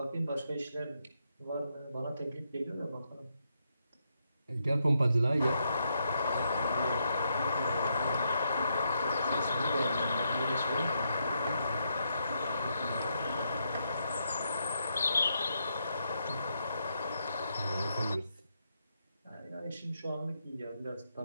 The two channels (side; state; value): both; inverted; correlation -0.80